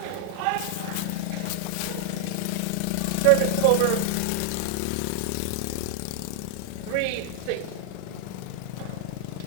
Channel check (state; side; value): different; both; correlation 0.00